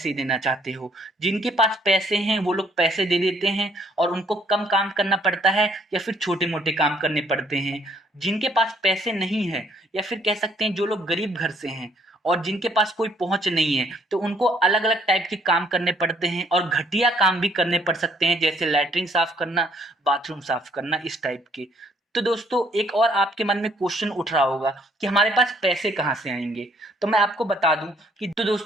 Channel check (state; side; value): normal; both; correlation 0.64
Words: देना चाहते हो। जिनके पास पैसे हैं वो लोग पैसे दे देते हैं और उनको कम काम करना पड़ता है या फिर छोटे मोटे काम करने पड़ते हैं। जिनके पास पैसे नहीं है या फिर कह सकते हैं जो लोग गरीब घर से हैं और जिनके पास कोई पहुंच नहीं है तो उनको अलग अलग टाइप के काम करने पड़ते हैं और घटिया काम भी करने पड़ सकते हैं, जैसे लैट्रिन साफ करना, बाथरूम साफ करना, इस टाइप के। तो दोस्तों एक और आपके मन में क्वेश्चन उठ रहा होगा कि हमारे पास पैसे कहाँ से आएंगे। तो मैं आपको बता दूं कि तो